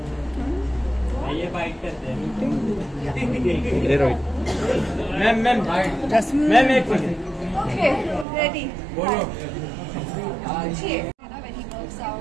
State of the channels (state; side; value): drops out; left; at 8.2 s